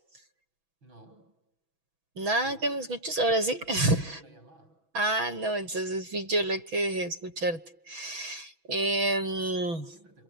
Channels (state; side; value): late; left; 6.1 ms